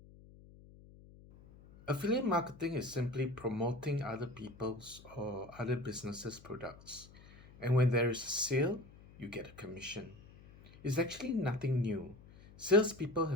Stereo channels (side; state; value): left; noise; hum, 21 dB below the sound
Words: Affiliate marketing is simply promoting other people's or other businesses' products. And when there is a sale, you get a commission. It's actually nothing new. Salespeople